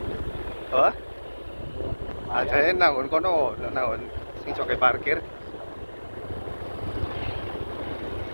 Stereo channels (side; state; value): both; inverted; correlation -1.00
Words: Apa? Aja nangon kono, nangon sing coke parkir.